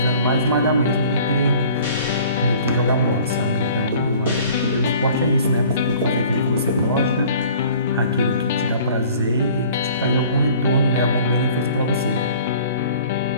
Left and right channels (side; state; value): both; inverted; correlation -0.50